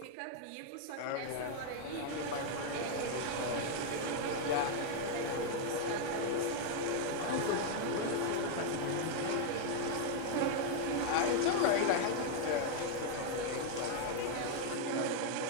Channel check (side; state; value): both; different; correlation 0.00